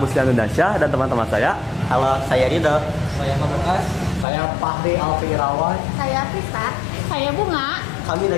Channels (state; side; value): drops out; right; at 4.2 s